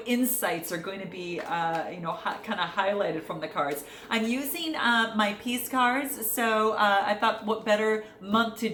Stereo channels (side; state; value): both; identical; correlation 1.00